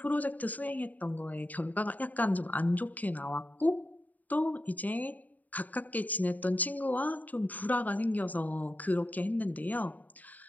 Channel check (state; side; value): late; right; 0.078 ms